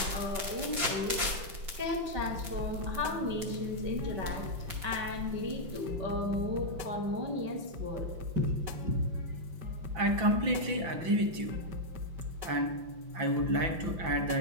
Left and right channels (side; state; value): left; late; 5.6 ms